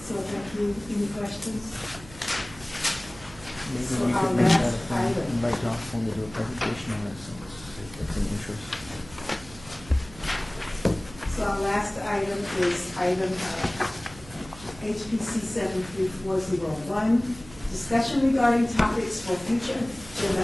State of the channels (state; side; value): noise; right; hum, 19 dB below the sound